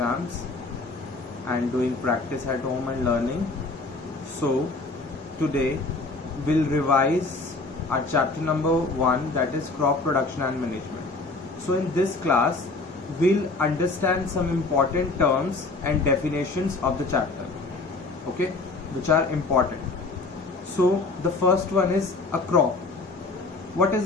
and doing practice at home and learning. So today we'll revise our chapter number 1, that is crop production and management. So in this class we'll understand some important terms and definitions of the chapter, okay, which are important. So the first one is a crop. What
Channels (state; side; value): quieter; right; 3.5 dB